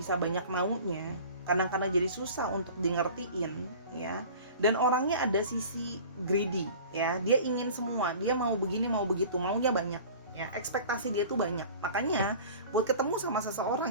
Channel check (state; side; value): inverted; both; correlation -0.42